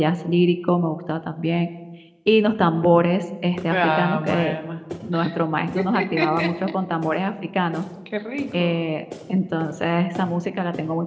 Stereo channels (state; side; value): identical; both; correlation 1.00